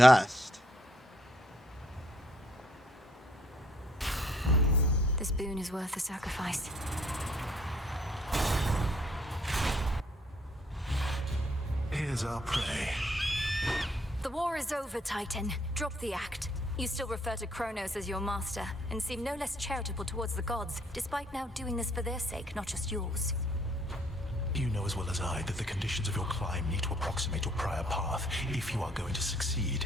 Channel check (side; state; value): both; normal; correlation 0.66